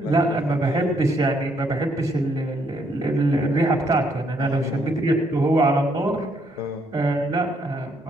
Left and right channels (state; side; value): normal; both; correlation 0.72